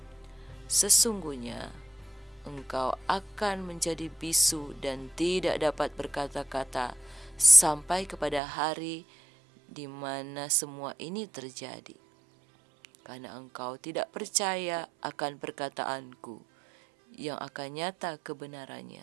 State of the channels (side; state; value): left; drops out; at 8.4 s